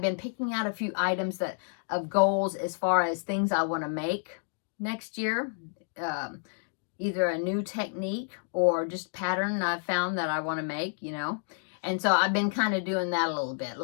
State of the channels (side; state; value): right; silent; digital silence